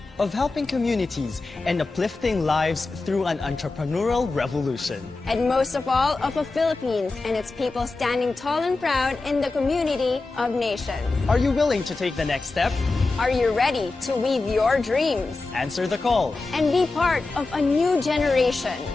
Of helping communities and uplifting lives through an entrepreneurial revolution. And most of all, of the Philippines and its people standing tall and proud in the community of nations. Are you willing to take the next step? Are you ready to weave your dreams? Answer the call. And be part of a new generation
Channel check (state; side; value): quieter; right; 3.6 dB